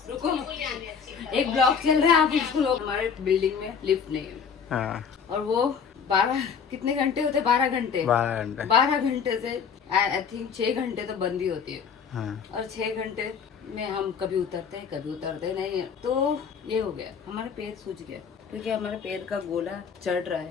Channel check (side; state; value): right; quieter; 6.6 dB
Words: रुको, एक ब्लॉक चल रहा है, आप इसको लोग, हमारे बिल्डिंग में लिफ्ट नहीं है। हाँ। और वो 12 कितने घंटे होते, 12 घंटे, 12 घंटे। 12 घंटे से आई थिंक 6 घंटे तो बंद ही होती है। हाँ। और 6 घंटे में हम कभी उतरते हैं, कभी उतरते नहीं है। तो ये हो गया, हमारा पैर सूज गया, क्योंकि हमारे पैर का गोला चढ़ रहा